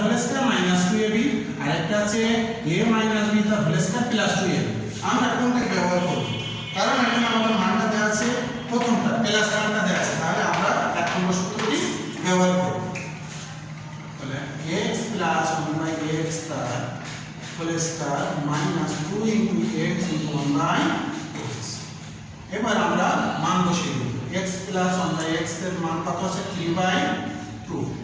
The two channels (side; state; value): both; identical; correlation 1.00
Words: হোল স্কয়ার মাইনাস 2ab আর একটা আছে a মাইনাস b তার হোল স্কয়ার প্লাস 2ab আমরা কোনটা ব্যবহার করব কারণ এখানে আমাদের মানটা দেওয়া আছে প্রথমটা প্লাস মানটা দেওয়া আছে তাহলে আমরা এক নম্বর সূত্রটি ব্যবহার করব তাহলে x 1 x তার whole square minus 2 x 1 x এবার আমরা মান বসিয়ে দেব x 1 x এর মান কত আছে 3/2